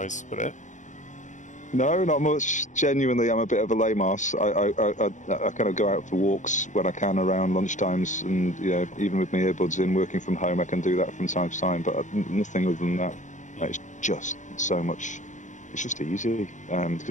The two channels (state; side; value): late; right; 0.36 ms